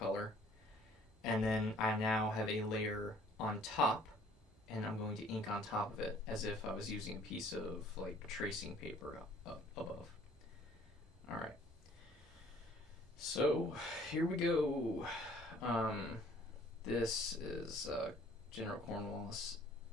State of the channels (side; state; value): both; normal; correlation 0.56